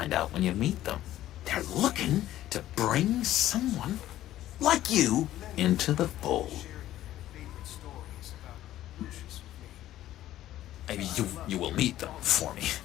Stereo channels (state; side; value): quieter; right; 13.6 dB